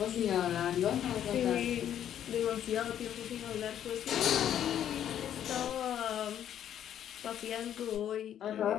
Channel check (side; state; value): right; quieter; 10.3 dB